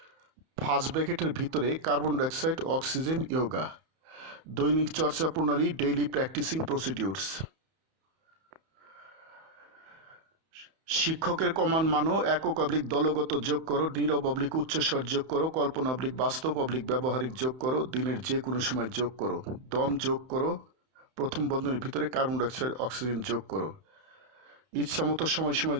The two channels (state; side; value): late; left; 31 ms